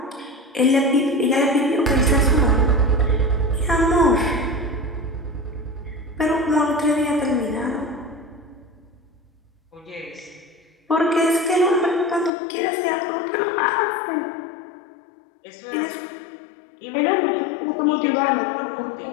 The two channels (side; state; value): right; drops out; at 12.3 s